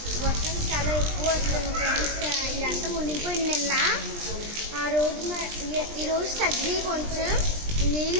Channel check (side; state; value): left; late; 20 ms